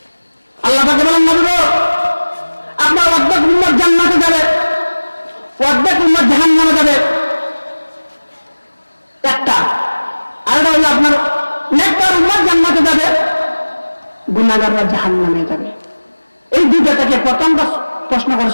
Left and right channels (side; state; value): both; inverted; correlation -1.00